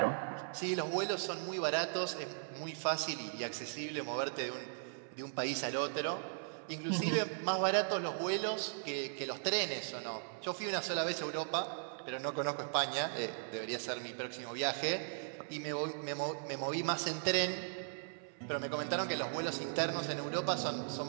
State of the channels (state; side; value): silent; left; 52 dB below the other